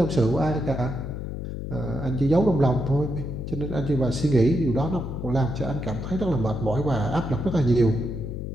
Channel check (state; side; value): noise; left; hum, 6 dB below the sound